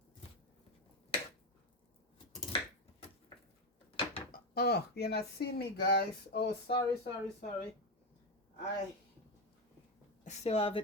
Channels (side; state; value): both; normal; correlation 0.11